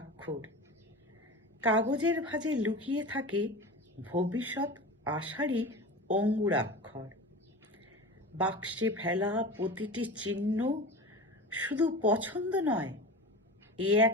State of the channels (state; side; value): normal; both; correlation 0.31